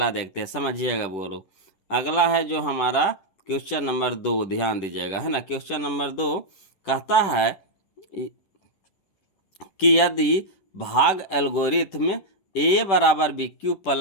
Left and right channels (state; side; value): late; right; 10 ms